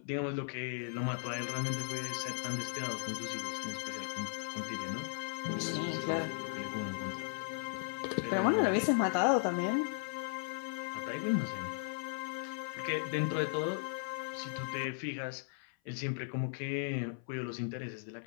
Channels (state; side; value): silent; right; 53 dB below the other